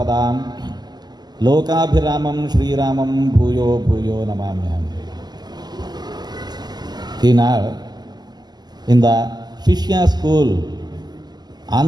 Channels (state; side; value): late; left; 0.20 ms